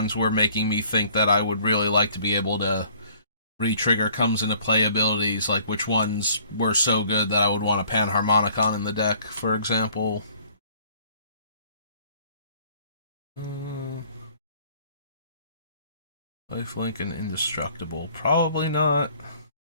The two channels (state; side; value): inverted; both; correlation -0.56